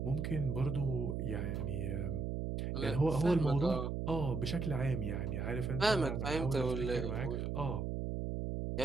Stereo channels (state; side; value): noise; right; hum, 2 dB below the sound